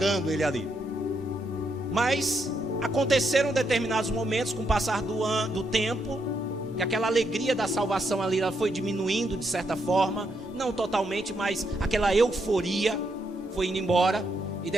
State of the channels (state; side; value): normal; both; correlation 0.78